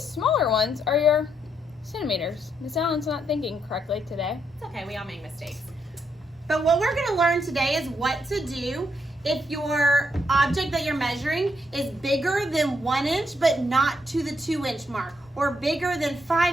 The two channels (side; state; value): both; normal; correlation 0.77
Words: smaller ones are your centimeters. Miss Allen's not thinking correctly today. It's okay, we all make mistakes. But what we're going to learn today is what to do if your object that you're measuring is bigger than 1 inch but not to the 2 inch mark, or bigger than